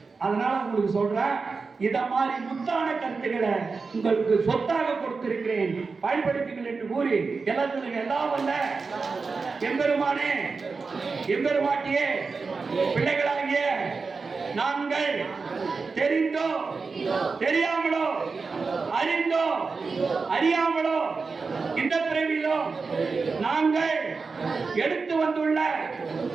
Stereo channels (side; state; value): left; quieter; 4.5 dB